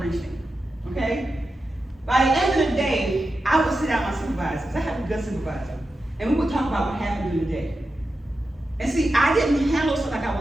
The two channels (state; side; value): normal; both; correlation 0.90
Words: okay? By the end of the day, I would sit down with my supervisors. I have a good supervisor. And we would talk about what happened during the day. And see, I didn't handle stuff like I